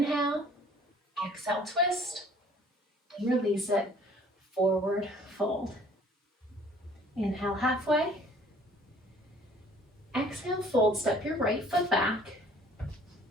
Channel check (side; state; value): both; normal; correlation 0.54